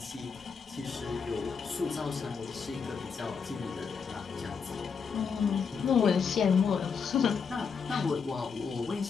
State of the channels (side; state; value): right; quieter; 5.9 dB